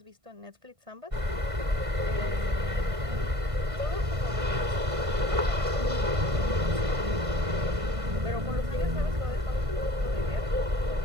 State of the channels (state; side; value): late; left; 1.5 ms